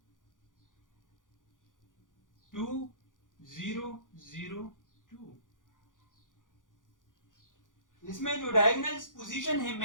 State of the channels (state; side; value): late; right; 0.88 ms